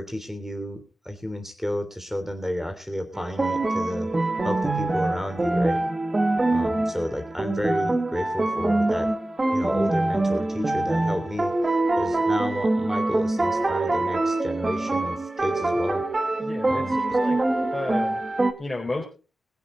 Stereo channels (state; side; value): normal; both; correlation 0.96